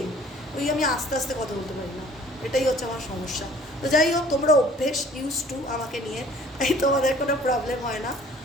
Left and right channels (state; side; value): normal; both; correlation 0.53